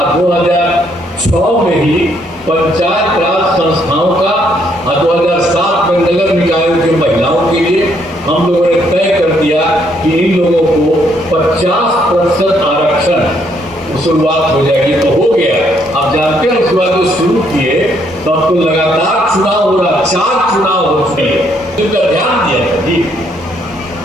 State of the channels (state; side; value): normal; both; correlation 0.71